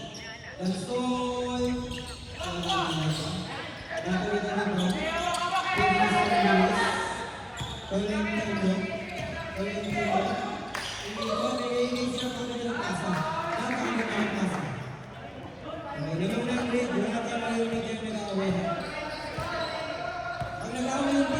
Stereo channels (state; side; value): identical; both; correlation 1.00